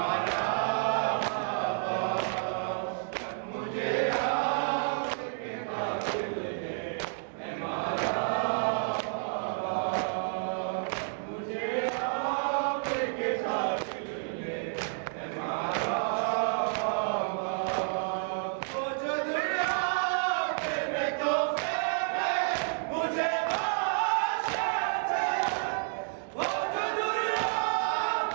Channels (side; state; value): left; silent; digital silence